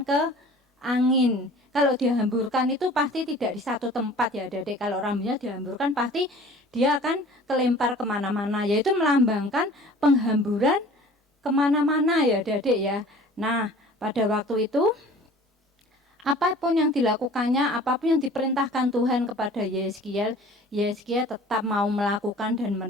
ke angin. Kalau dihamburkan itu pasti tidak di satu tempat ya, adik-adik. Kalau rambutnya dihamburkan pasti dia akan kelempar kemana-mana, yaitu melambangkan penghamburan kemana-mana ya, adik-adik ya. Nah, pada waktu itu apapun yang dilakukannya, apapun yang diperintahkan Tuhan kepada Yeskiel, Yeskiel tetap mau melakukan dan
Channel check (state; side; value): normal; both; correlation 0.47